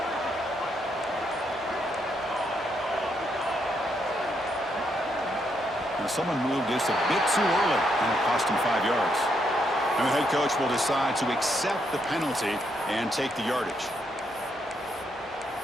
Now someone moved just a bit too early, and it cost him 5 yards. And the head coach will decide to accept the penalty and take the yardage.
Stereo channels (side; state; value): both; normal; correlation 0.77